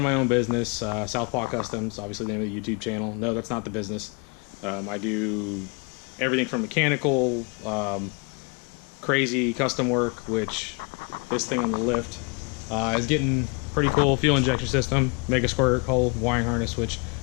my own business, Southpaw Customs, obviously the name of the YouTube channel. No, that's not the business. I do everything from mechanical, crazy custom work, which this thing on the lift is getting pretty cool. Fuel injection system, mega squirt hole, wiring harness, which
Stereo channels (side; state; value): right; quieter; 31.8 dB